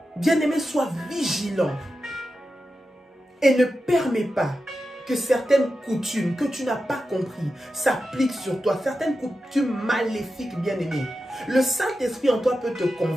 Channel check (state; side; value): normal; both; correlation 0.91